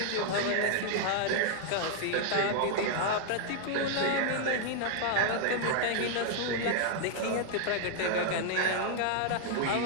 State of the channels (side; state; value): both; different; correlation -0.01